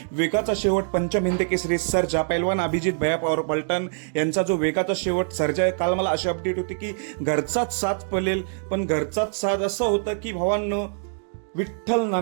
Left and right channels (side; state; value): left; silent; digital silence